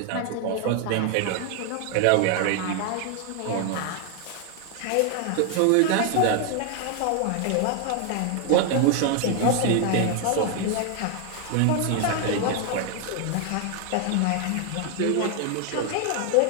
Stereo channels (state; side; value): different; both; correlation 0.00